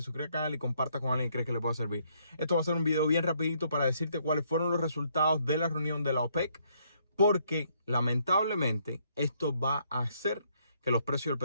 suscribas al canal y compartas con alguien que crees que le pueda servir. Esto va a ser un video bien rapidito para decirte cuáles fueron los resultados de la reunión de la OPEC, porque lamentablemente esto va a hacer que los precios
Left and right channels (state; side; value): inverted; both; correlation -0.70